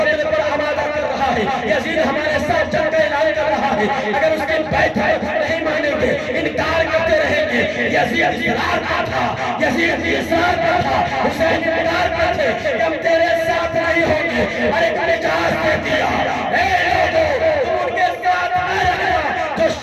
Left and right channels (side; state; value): both; identical; correlation 1.00